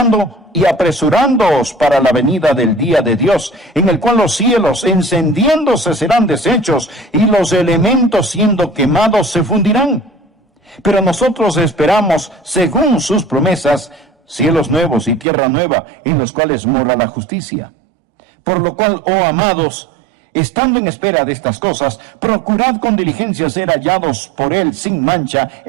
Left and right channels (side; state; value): left; drops out; at 15.2 s